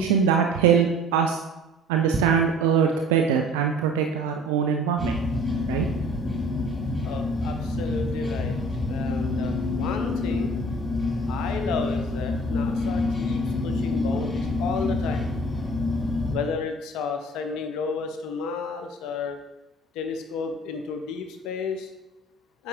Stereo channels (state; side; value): normal; both; correlation 0.47